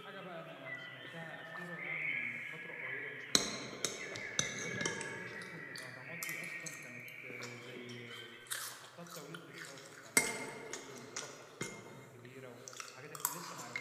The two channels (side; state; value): both; identical; correlation 1.00